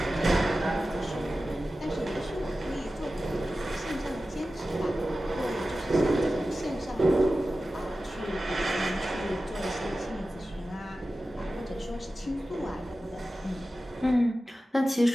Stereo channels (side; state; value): both; normal; correlation 0.94